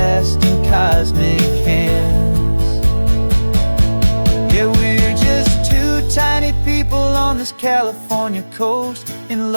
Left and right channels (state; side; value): inverted; both; correlation -1.00